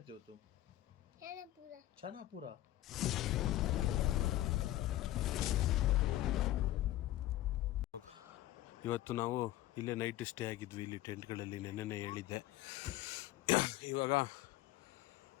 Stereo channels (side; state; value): right; quieter; 15.0 dB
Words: हो तुम? छानापुरा। छानापुरा। ಇವತ್ತು ನಾವು ಇಲ್ಲೇ ನೈಟ್ ಸ್ಟೇ ಆಗಿದ್ವಿ ಇಲ್ಲಿ ಟೆಂಟ್ಗಳಲ್ಲಿ. ನೆನ್ನೆನೇ ಹೇಳಿದ್ದೆ. ಇವಾಗ